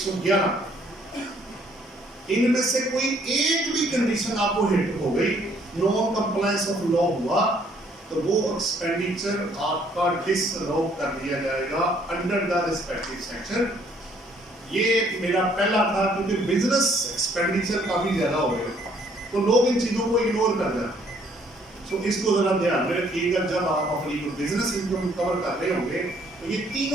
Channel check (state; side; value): normal; both; correlation 0.64